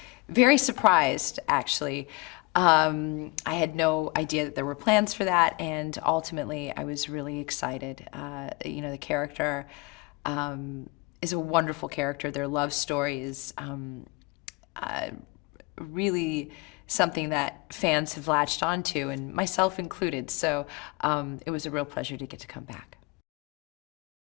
very surprised, actually. I had no idea that there were plans for that, and ultimately I was really excited. The character is a wonderful character. Their love story is really something that fans have latched onto, and myself included. So it was a real pleasure to get to come back.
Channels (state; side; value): quieter; right; 24.5 dB